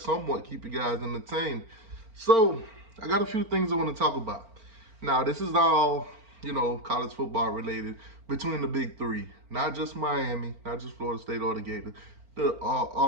keep you guys entertained. So I got a few things I want to talk about. Now this is all, college football related between the big three. Not just Miami, not just Florida State or the Gators.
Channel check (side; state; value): left; late; 4.4 ms